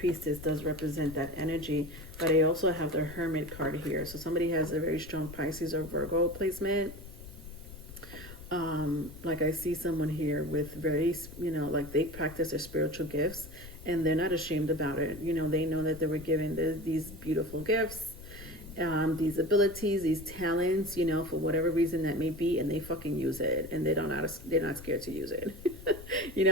does represent that energy, but I also have the Hermit card here. So somebody has a very strong Pisces or Virgo placement. Like I see someone here with very, like they practice their spiritual gifts, and they're not ashamed about it. They know that they were given these beautiful gifts, these abilities, these talents, for whatever reason that may be, and they fucking use it, and they're not scared to use it.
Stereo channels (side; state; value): left; noise; rumble, 15 dB below the sound